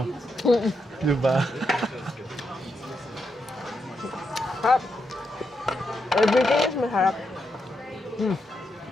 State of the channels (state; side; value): normal; both; correlation 0.83